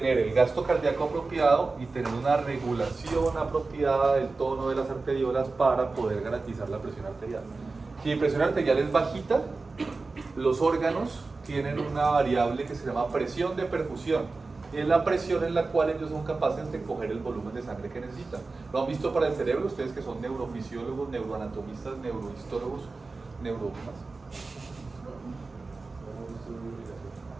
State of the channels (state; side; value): quieter; left; 3.8 dB